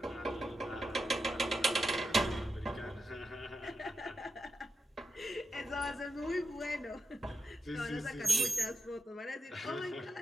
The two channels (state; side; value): normal; both; correlation 0.87